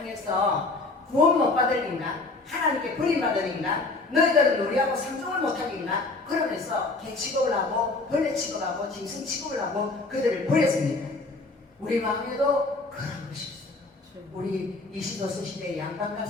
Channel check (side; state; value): right; quieter; 3.4 dB